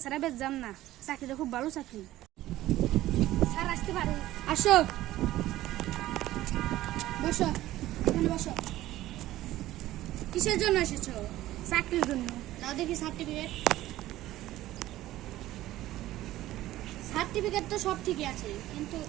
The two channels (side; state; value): left; quieter; 15.3 dB